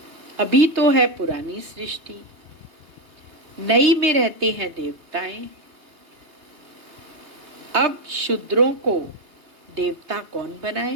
अभी तो है पुरानी सृष्टि, नई में रहते हैं देवताएं। अब शूद्रों को देवता कौन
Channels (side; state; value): left; late; 2.8 ms